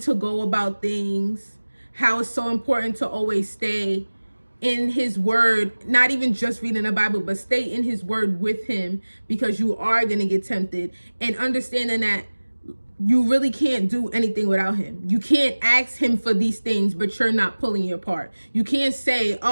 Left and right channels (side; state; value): both; inverted; correlation -1.00